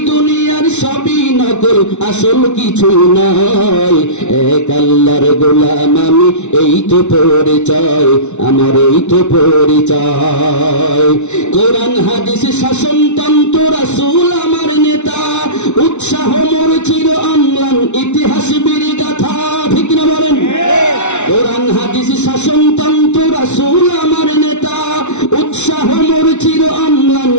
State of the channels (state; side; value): late; right; 0.82 ms